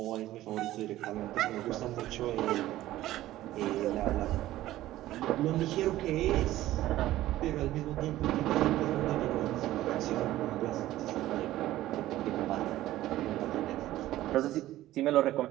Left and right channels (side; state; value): left; quieter; 15.0 dB